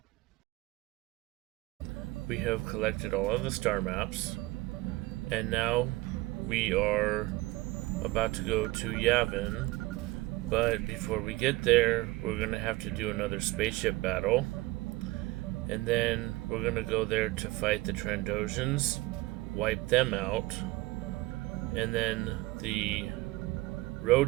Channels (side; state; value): left; quieter; 20.1 dB